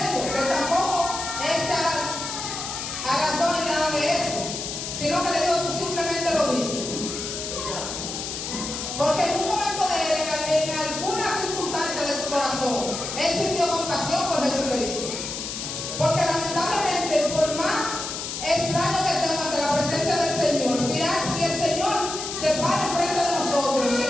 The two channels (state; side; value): noise; left; hiss, 6 dB below the sound